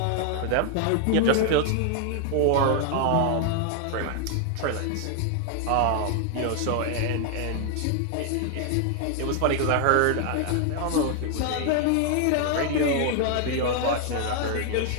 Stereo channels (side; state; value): both; different; correlation 0.00